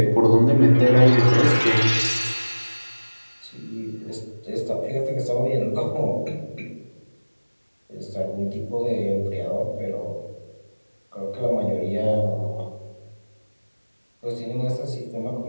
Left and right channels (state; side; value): inverted; both; correlation -1.00